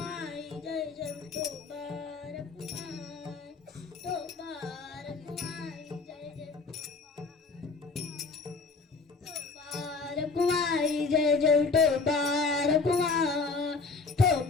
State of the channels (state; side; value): quieter; right; 4.3 dB